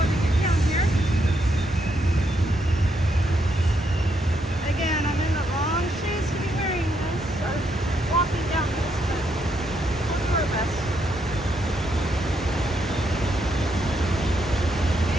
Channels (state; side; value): normal; both; correlation 0.77